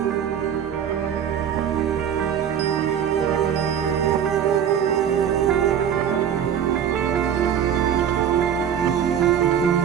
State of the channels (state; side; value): quieter; left; 8.8 dB